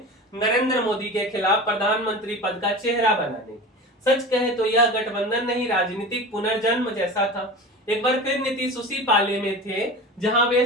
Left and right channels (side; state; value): both; normal; correlation 0.32